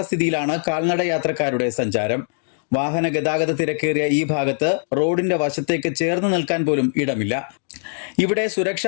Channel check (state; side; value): silent; right; digital silence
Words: കാൽനട യാത്രക്കാരുടെ സഞ്ചാരം. വാഹന ഗതാഗത തിരക്കേറിയ ഈ ഭാഗത്ത് റോഡിന്റെ വശത്തേക്ക് ചേർന്ന് നിൽക്കാൻ പോലും ഇടമില്ല. ഇവിടെ